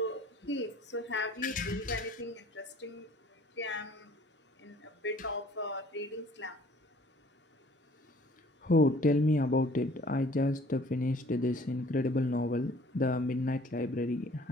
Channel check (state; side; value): normal; both; correlation 0.54